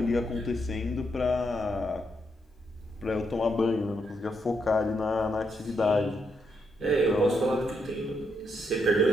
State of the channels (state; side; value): normal; both; correlation 0.79